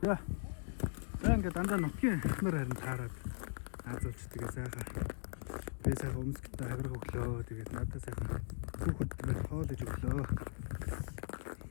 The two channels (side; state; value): right; silent; digital silence